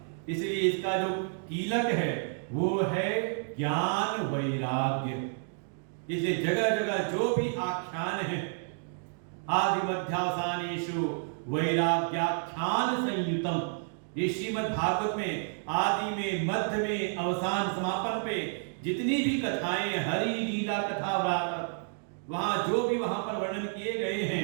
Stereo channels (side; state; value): left; silent; 58 dB below the other